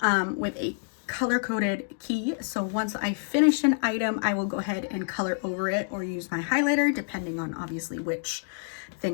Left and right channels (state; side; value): silent; right; digital silence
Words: with a color-coded key. So once I finish an item, I will go ahead and color over it or use my highlighter, depending on obviously which